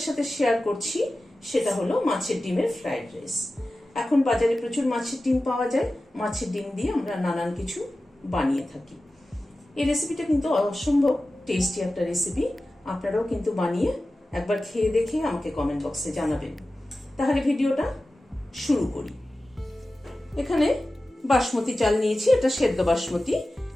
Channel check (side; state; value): both; normal; correlation 0.95